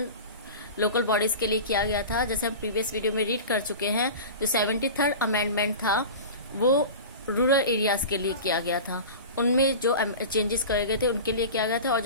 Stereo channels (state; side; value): inverted; both; correlation -0.32